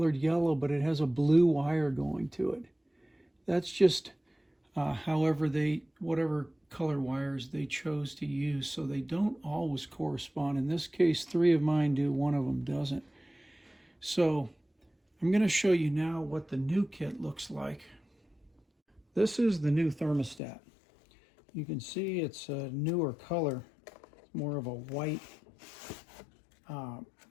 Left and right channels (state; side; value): drops out; right; at 20.4 s